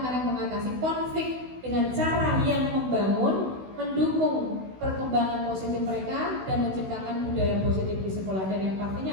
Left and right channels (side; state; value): left; late; 16 ms